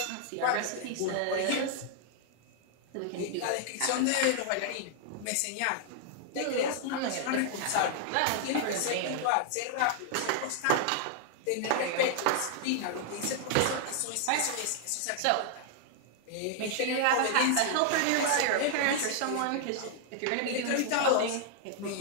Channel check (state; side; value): different; both; correlation 0.00